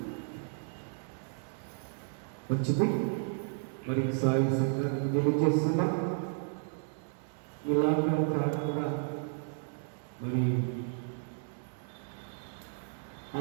మంచిది. మరి సాయి సంఘానికి తెలియజేస్తున్నా ఇలాగ కాకుండా మరి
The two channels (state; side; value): silent; left; 56 dB below the other